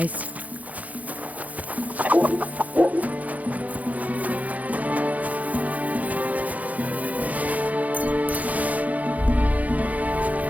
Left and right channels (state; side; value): late; left; 0.075 ms